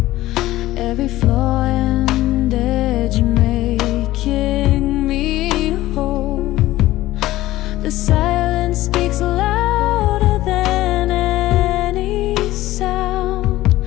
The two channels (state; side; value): quieter; right; 16.2 dB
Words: Every flaw and edge making me whole. The silence speaks louder than any sound.